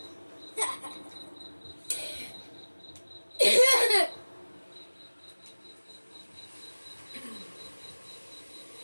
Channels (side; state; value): both; inverted; correlation -1.00